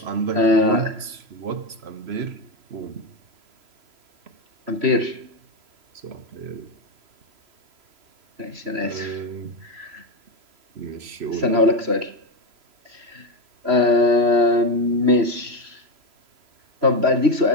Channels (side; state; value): left; late; 3.0 ms